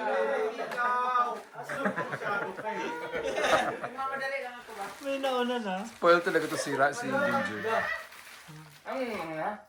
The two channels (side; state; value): both; identical; correlation 1.00